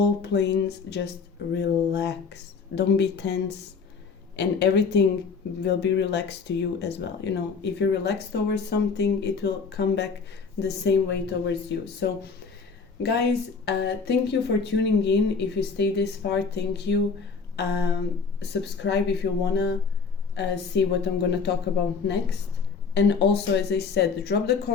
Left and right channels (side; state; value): right; quieter; 5.3 dB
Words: planes. Just relax. Don't be tense, and everything will be relaxed to you as well. If you're relaxed towards something, it will come back the same way towards you. So guys, thank you for tuning in. If you stay this far, thank you. Subscribe if you wanna see what I'm gonna talk about next. And also, as I said, drop the